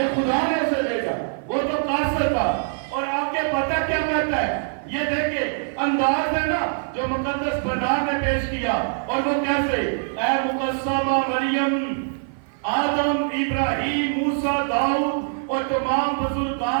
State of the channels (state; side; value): silent; left; 56 dB below the other